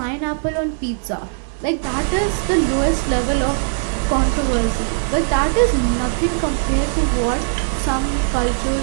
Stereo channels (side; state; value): left; silent; digital silence